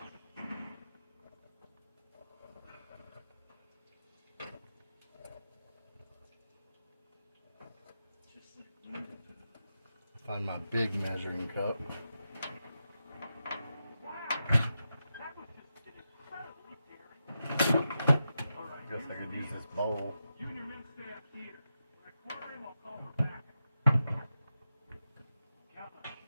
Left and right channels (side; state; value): both; inverted; correlation -0.89